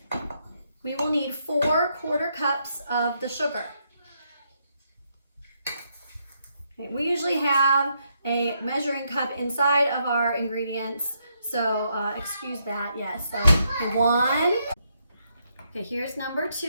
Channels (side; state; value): both; inverted; correlation -0.77